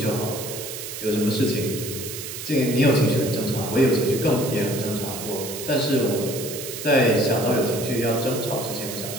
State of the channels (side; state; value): right; noise; hiss, 8 dB below the sound